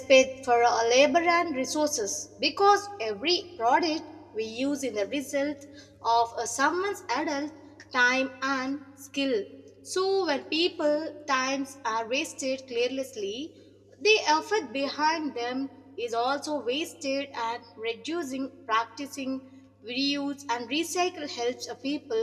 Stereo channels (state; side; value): identical; both; correlation 1.00